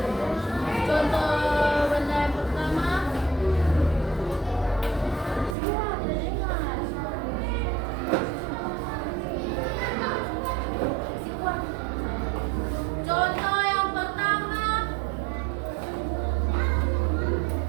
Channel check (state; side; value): drops out; left; at 5.6 s